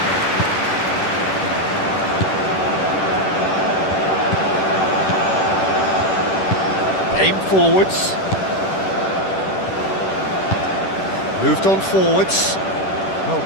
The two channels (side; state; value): right; late; 10 ms